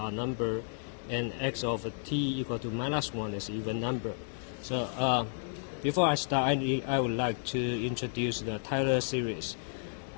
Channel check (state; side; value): silent; right; digital silence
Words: number, and x of t equal to -1 is even number. So before I start, I would like to introduce the Taylor series.